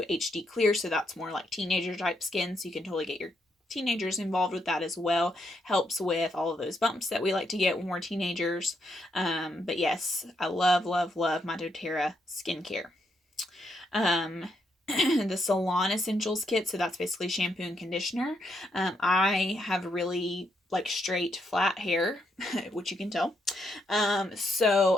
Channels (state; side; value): normal; both; correlation 0.78